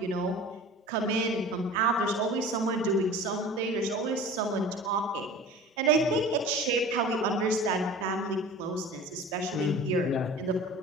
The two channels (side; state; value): both; normal; correlation 0.39